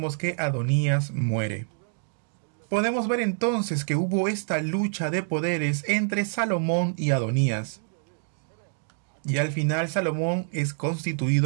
que Adonías muere. Podemos ver entonces que hubo esta lucha de poderes entre Salomón y Adonías. Y al final Salomón es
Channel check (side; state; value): left; silent; digital silence